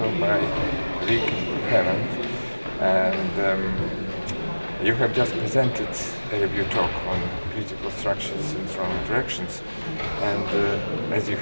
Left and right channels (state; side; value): inverted; both; correlation -1.00